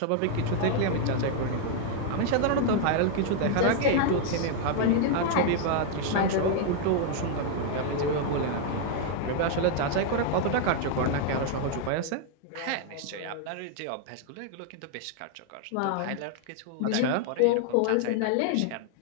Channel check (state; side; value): different; both; correlation 0.00